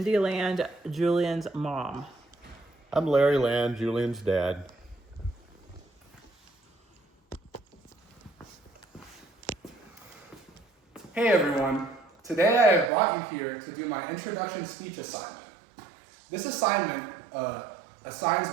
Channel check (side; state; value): left; drops out; at 12.9 s